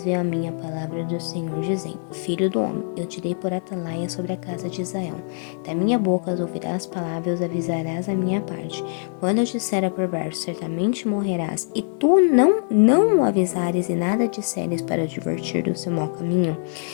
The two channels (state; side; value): silent; right; 57 dB below the other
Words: veio a minha palavra do Senhor, dizendo: Filho do homem, eu te dei por atalaia sobre a casa de Israel. Da minha boca ouvirás palavras, avisarás a minha parte. Quando eu disser a perverso, certamente morrerás, e tu não o avisares e nada disseres para advertir do seu mau caminho,